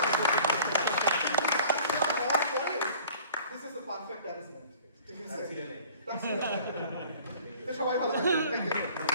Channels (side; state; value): both; inverted; correlation -0.48